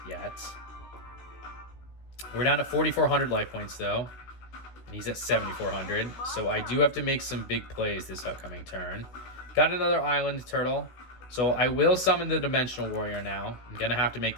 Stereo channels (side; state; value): right; late; 16 ms